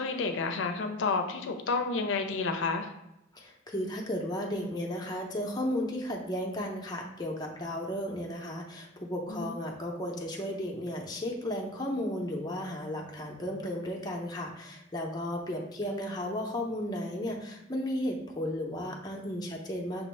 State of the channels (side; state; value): both; normal; correlation 0.38